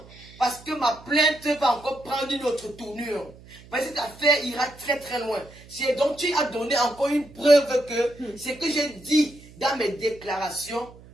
Parce que ma plainte va encore prendre une autre tournure. Mais cette affaire ira très très loin. Donc tu as donné encore une preuve que ce que j'ai dit dans mes déclarations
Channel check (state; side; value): noise; right; hum, 21 dB below the sound